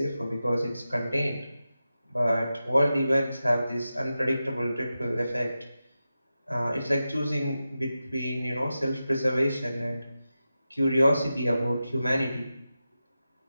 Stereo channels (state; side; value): inverted; both; correlation -0.92